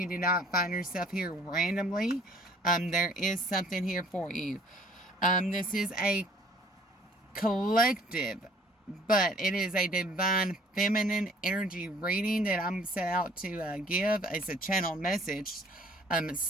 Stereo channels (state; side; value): normal; both; correlation 0.56